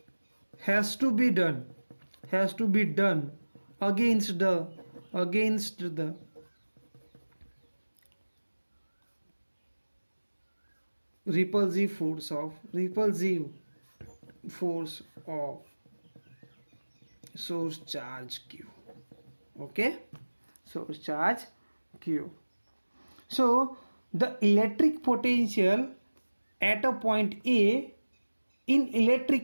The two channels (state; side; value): inverted; both; correlation -1.00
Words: has to be done against the repulsive force of source charge q. Okay, source charge q. So the electric potential at a point A in